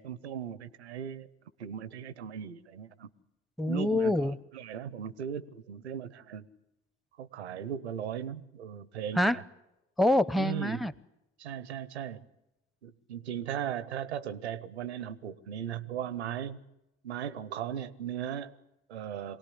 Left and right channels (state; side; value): normal; both; correlation 0.60